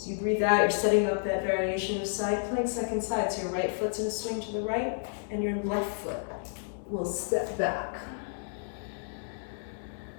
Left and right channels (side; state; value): right; silent; digital silence